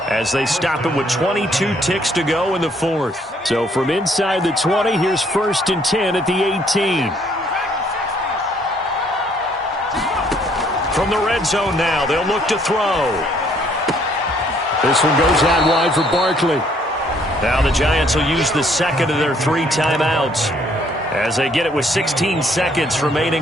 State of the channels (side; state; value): both; normal; correlation 0.65